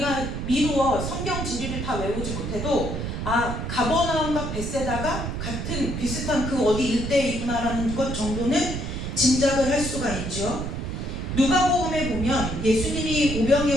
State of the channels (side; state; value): right; noise; rumble, 4 dB below the sound